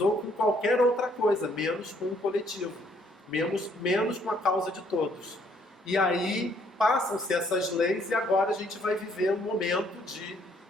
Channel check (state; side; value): normal; both; correlation 0.67